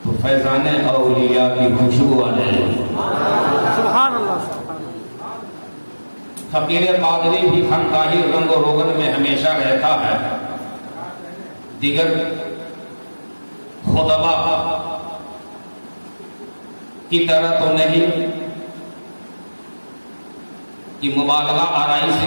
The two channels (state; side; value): inverted; both; correlation -1.00